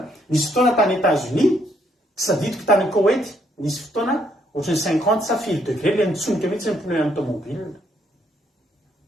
misy fotoana tany États-Unis sadidiko tany Koweït nisy fotoana ohatrany 50 sa 50 degré le nitsonika mihitsy ny pneu amin'ny tomobile.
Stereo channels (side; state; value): both; normal; correlation 0.71